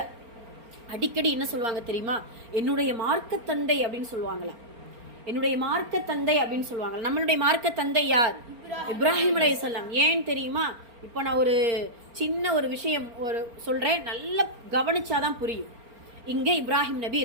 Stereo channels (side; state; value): left; late; 4.4 ms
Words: அடிக்கடி என்ன சொல்லுவாங்க தெரியுமா? என்னுடைய மார்க்க தந்தை அப்படின்னு சொல்லுவாங்களா. என்னுடைய மார்க்க தந்தை அப்படின்னு சொல்லுவாங்க. நம்மளுடைய மார்க்க தந்தை யார்? இப்ராஹிம் அலைஹிஸ்ஸலாம். ஏன் தெரியுமா? இப்போ நான் ஒரு சின்ன ஒரு விஷயம் சொல்றேன், நல்லா கவனிச்சாதான் புரியும். இங்க இப்ராஹிம் நபி